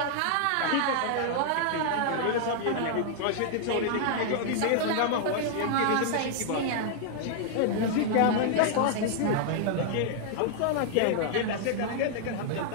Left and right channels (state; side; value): different; both; correlation 0.00